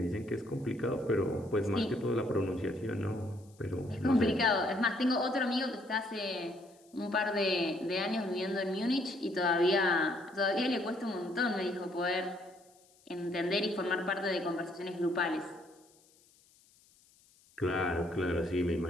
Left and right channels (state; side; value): noise; left; hiss, 30 dB below the sound